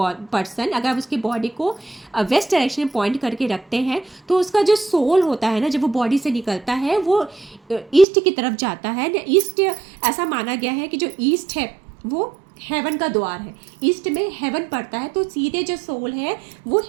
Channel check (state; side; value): drops out; left; at 8.1 s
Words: person, अगर उसकी बॉडी को वेस्ट डायरेक्शन में पॉइंट करके रखते हैं, तो उसका जो सोल होता है ना, जब वो बॉडी से निकलता है, वो ईस्ट की तरफ जाता है। ईस्ट, ऐसा माना गया है कि जो ईस्ट है वो हेवन का द्वार है, ईस्ट में हेवन पड़ता है, तो सीधे जो सोल है वो